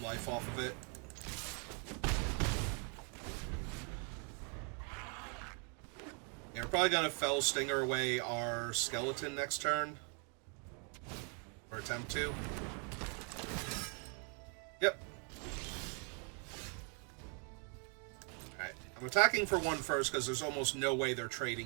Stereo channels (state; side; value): quieter; left; 38.2 dB